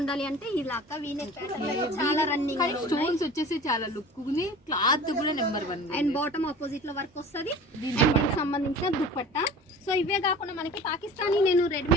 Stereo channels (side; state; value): both; normal; correlation 0.40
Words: ఉండాలి అంటే ఇలా అక్క. వీ నెక్ ప్యాటర్న్ చాలా రన్నింగ్, స్టోన్స్ వచ్చేసి చాలా లుక్ ఉంది, క్లాత్ కూడా నెంబర్ 1 అండ్ బాటమ్ ఆపోజిట్ లో వర్క్ వస్తుంది. దీనికి సంబంధించిన దుప్పట్టా. సో ఇవే కాకుండా మనకి పాకిస్తానీ నేను